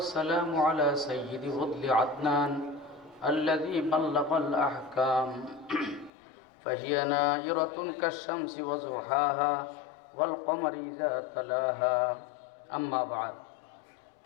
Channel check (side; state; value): right; drops out; at 6.1 s